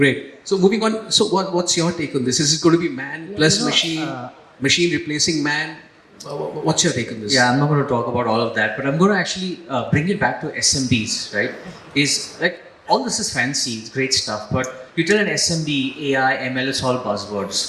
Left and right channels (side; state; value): both; identical; correlation 1.00